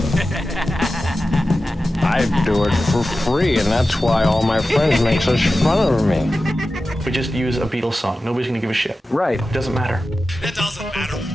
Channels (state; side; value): normal; both; correlation 0.94